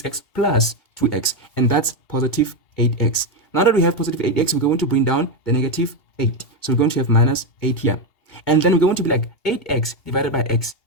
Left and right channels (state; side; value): late; right; 2.8 ms